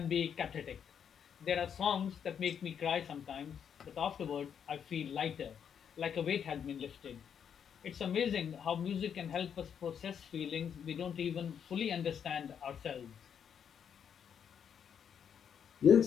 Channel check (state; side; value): quieter; right; 7.9 dB